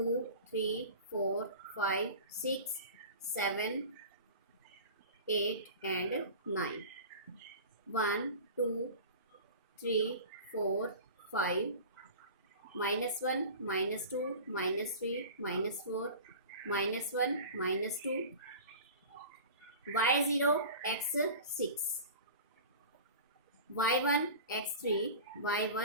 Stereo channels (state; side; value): inverted; both; correlation -0.36